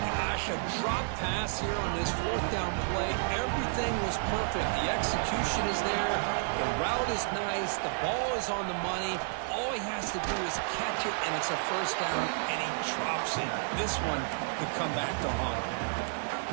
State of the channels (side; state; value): left; silent; 57 dB below the other